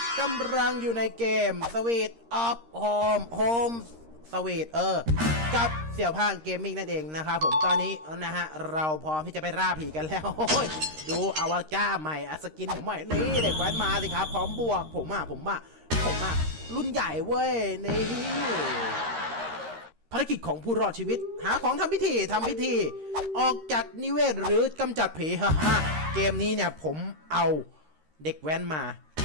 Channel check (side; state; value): left; late; 13 ms